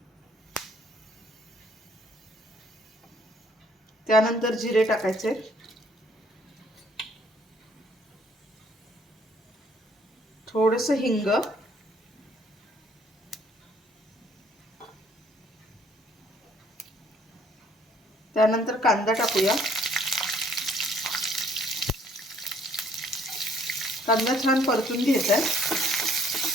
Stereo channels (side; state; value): both; normal; correlation 0.63